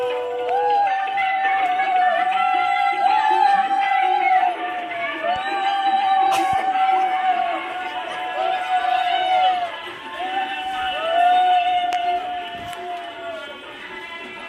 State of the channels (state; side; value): identical; both; correlation 1.00